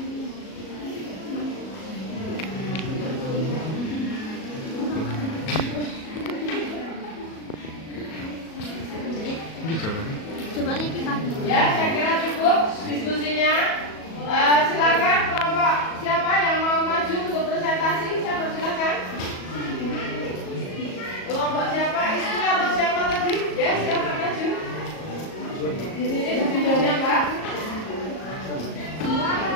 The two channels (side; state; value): right; late; 37 ms